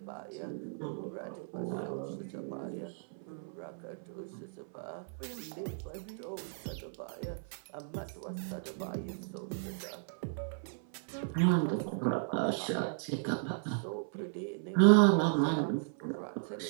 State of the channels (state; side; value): silent; left; 54 dB below the other